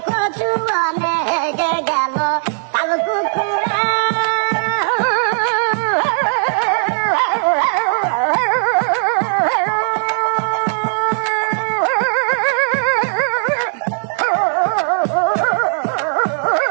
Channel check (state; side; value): silent; left; digital silence